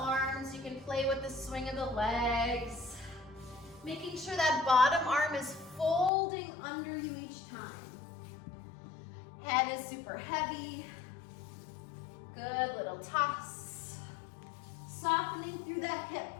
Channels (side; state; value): right; drops out; at 6.1 s